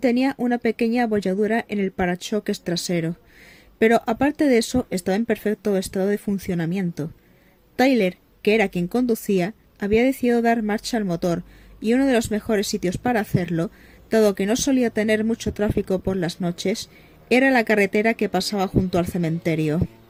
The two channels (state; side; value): identical; both; correlation 1.00